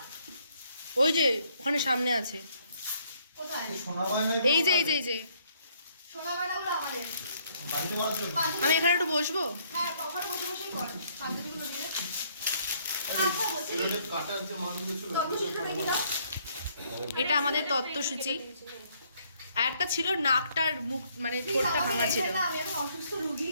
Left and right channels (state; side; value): inverted; both; correlation -0.67